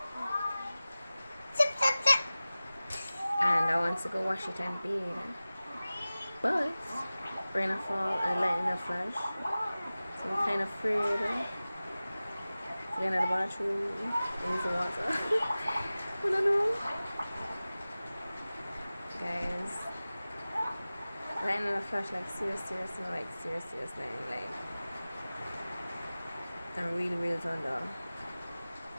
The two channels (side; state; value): both; inverted; correlation -0.97